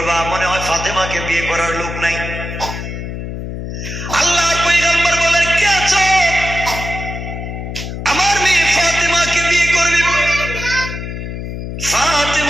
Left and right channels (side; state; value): left; noise; hum, 7 dB below the sound